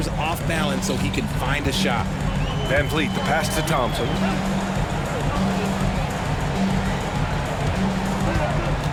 off balance so he can find a shot. Van Vliet, the pass to Thompson.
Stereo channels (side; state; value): both; identical; correlation 1.00